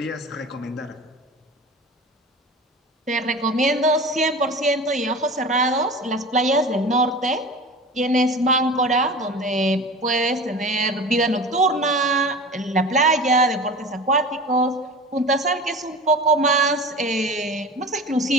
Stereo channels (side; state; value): both; normal; correlation 0.35